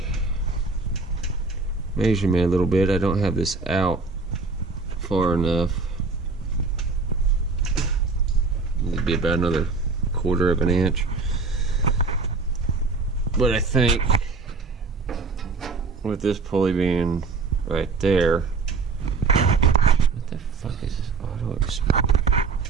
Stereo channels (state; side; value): quieter; left; 4.2 dB